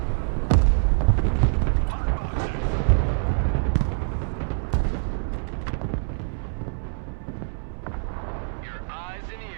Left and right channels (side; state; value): left; silent; 62 dB below the other